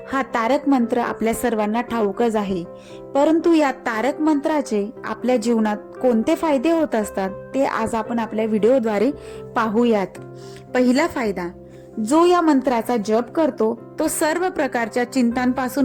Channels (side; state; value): both; identical; correlation 1.00